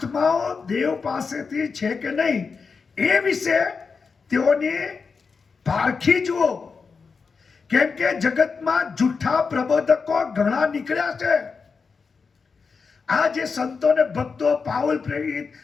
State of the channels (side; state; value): right; quieter; 5.1 dB